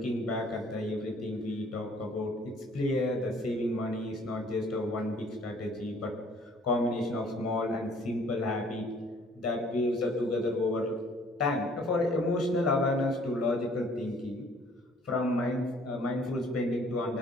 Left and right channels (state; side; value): normal; both; correlation 0.58